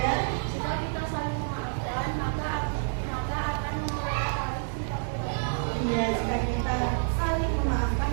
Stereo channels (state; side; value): silent; left; digital silence